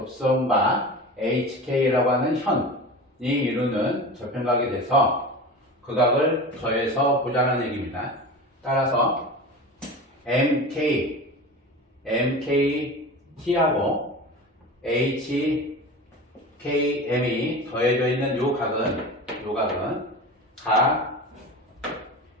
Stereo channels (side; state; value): both; normal; correlation 0.31